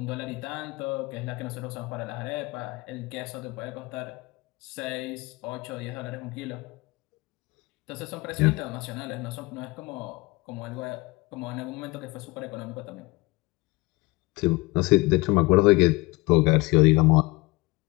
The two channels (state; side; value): quieter; right; 23.3 dB